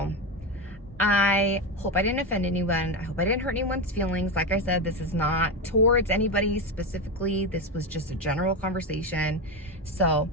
I hope I didn't offend anyone. I hope I didn't hurt anyone's feelings. Like I said, this is not towards anybody specifically. This was just a general conversation. So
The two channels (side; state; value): both; normal; correlation 0.15